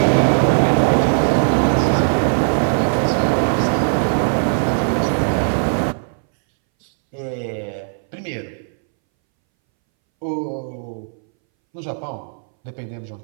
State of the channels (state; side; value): silent; left; 64 dB below the other